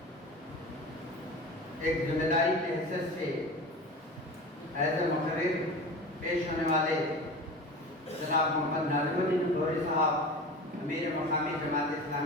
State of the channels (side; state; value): both; normal; correlation 0.33